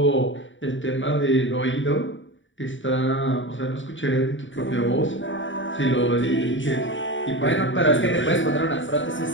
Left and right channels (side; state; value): right; late; 0.55 ms